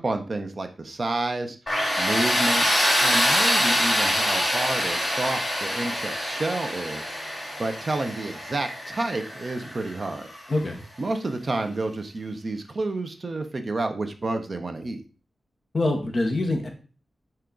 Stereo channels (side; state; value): both; normal; correlation 0.92